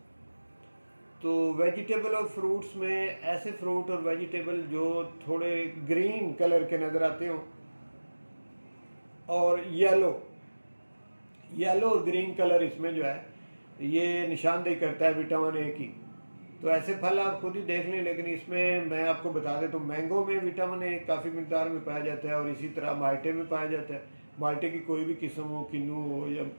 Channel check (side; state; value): both; inverted; correlation -1.00